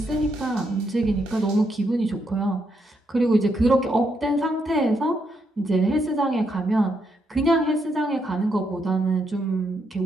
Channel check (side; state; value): both; normal; correlation 0.78